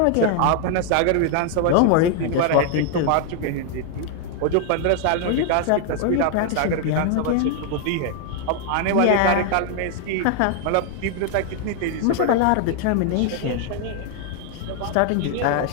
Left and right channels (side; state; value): both; different; correlation 0.00